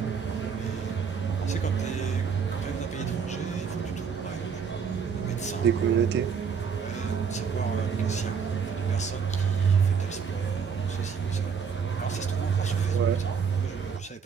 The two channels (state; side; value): quieter; left; 6.3 dB